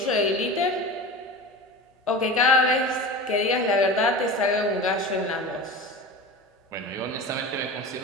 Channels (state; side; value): normal; both; correlation 0.31